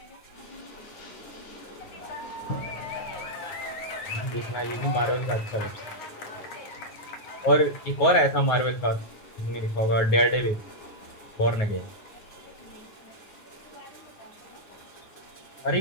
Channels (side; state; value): right; late; 9.4 ms